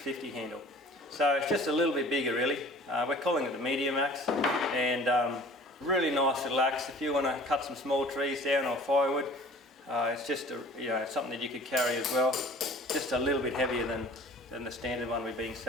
handle. So it's just a little bit bigger really. We're calling it the medium axe, and really nice little axe if you want to cut some small trees down or firewood. It's just something that you could carry as well. Just a little bit heavier than the standard one we've been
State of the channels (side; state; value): both; normal; correlation 0.47